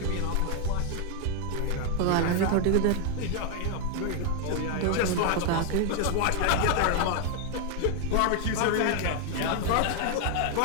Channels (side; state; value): both; different; correlation 0.01